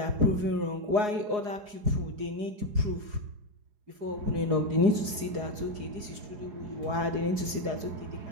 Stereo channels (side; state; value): left; late; 4.8 ms